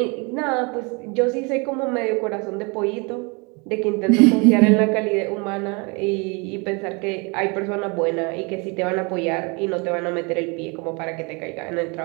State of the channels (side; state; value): left; quieter; 30.5 dB